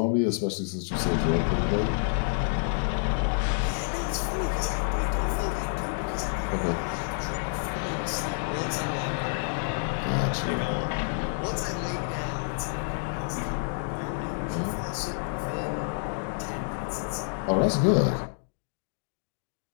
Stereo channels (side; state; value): right; silent; digital silence